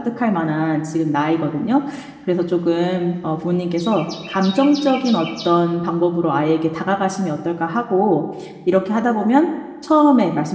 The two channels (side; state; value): both; identical; correlation 1.00